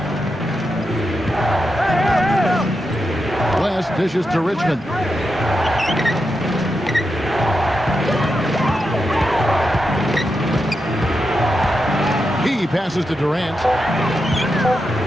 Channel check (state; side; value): normal; both; correlation 0.87